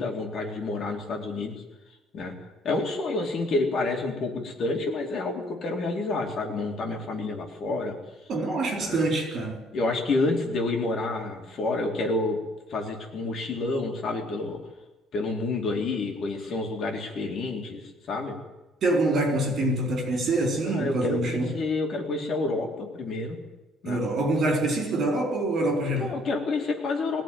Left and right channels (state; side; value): normal; both; correlation 0.60